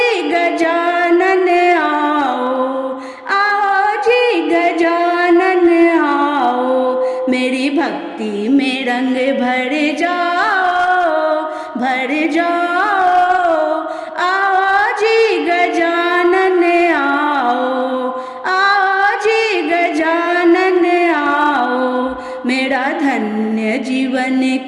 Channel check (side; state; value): both; identical; correlation 1.00